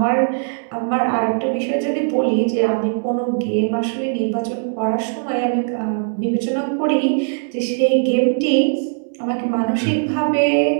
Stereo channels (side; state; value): left; silent; digital silence